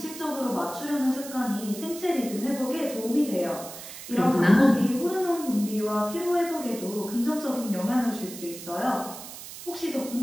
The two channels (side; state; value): right; noise; hiss, 12 dB below the sound